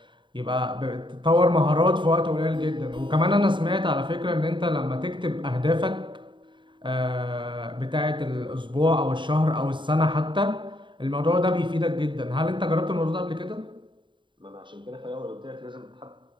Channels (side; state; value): left; late; 0.23 ms